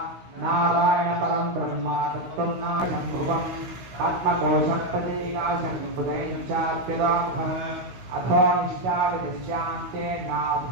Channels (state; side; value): late; left; 16 ms